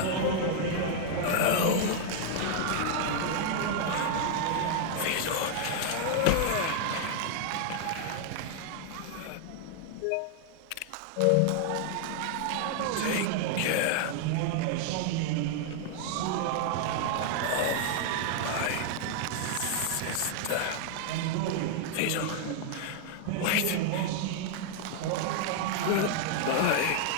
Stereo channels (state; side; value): different; both; correlation 0.00